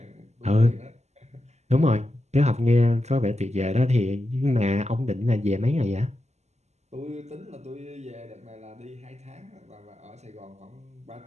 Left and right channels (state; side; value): late; left; 0.33 ms